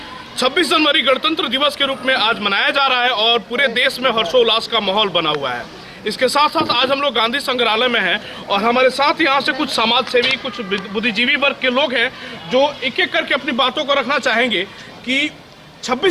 26 जनवरी गणतंत्र दिवस के रूप में आज मनाया जा रहा है और पूरे देश में हर्षोल्लास का माहौल बना हुआ है। इसके साथ साथ आज हम लोग गांधी संग्रहालय में हैं और हमारे साथ यहाँ से कुछ समाज सेवी, कुछ बुद्धिजीवी वर्ग के लोग हैं जो एक एक करके अपनी बातों को रखना चाहेंगे कि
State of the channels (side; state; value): both; identical; correlation 1.00